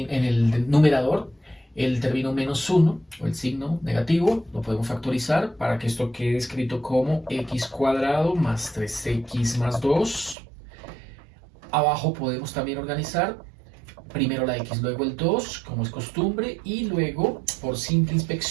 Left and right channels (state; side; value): drops out; left; at 10.4 s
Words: numerador el término menos 1 o el signo negativo lo podemos factorizar para que esto quede escrito como x cuadrado más 3x más 2. Abajo podemos también organizar primero la x, luego el 2, como es costumbre, y luego, por simple